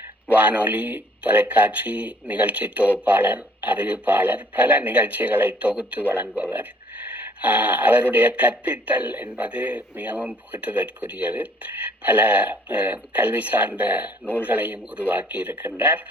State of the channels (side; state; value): both; normal; correlation 0.59